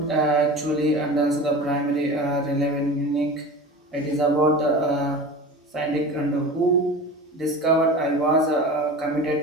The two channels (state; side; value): normal; both; correlation 0.33